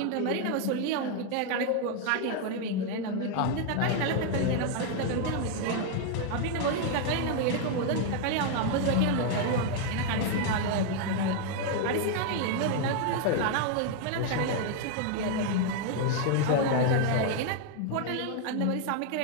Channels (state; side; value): different; both; correlation 0.00